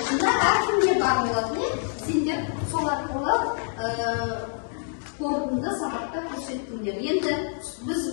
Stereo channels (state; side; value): silent; right; digital silence